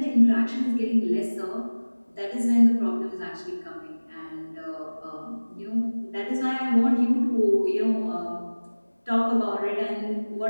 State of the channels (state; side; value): inverted; both; correlation -1.00